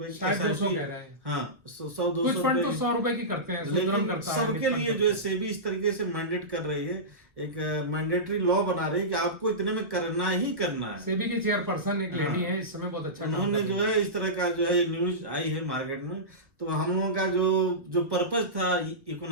शायद 200 कह रहे हैं। हाँ, 100-200 कुछ फंड तो 100 रुपए की करते हैं, लेकिन सबके लिए जो है सेबी इस तरीके से मैंडेट कर रही है, एक मैंडेटरी लॉ बना रही है कि आपको इतने में करना ही करना है। सेबी की चेयरपर्सन एक लेडी है, इस समय बहुत अच्छा उन्होंने जो है इस तरह का जो है न्यूज आई है मार्केट में। तो हम लोगों का जो पर्पज था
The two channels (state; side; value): late; left; 1.1 ms